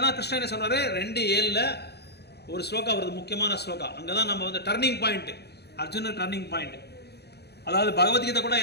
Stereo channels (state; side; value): late; right; 0.48 ms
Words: தான் கிருஷ்ணன் என்ன சொல்கிறாரு, 2:7 ஒரு ஸ்லோகா வருது, முக்கியமான ஸ்லோகா. அங்கே தான் நம்ம டர்னிங் பாயிண்ட், அர்ஜுனர் டர்னிங் பாயிண்ட். அதாவது பகவத்கீதை கூட